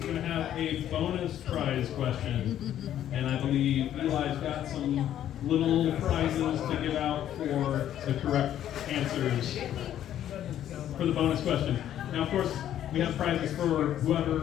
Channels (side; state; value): right; quieter; 11.2 dB